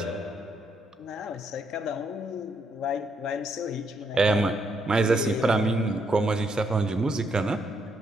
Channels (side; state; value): both; normal; correlation 0.76